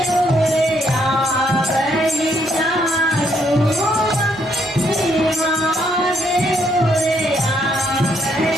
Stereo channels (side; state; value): both; normal; correlation 0.72